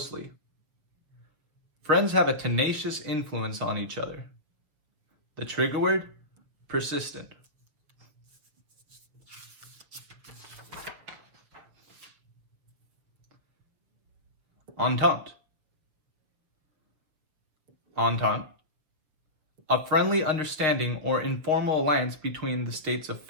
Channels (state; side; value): late; left; 6.7 ms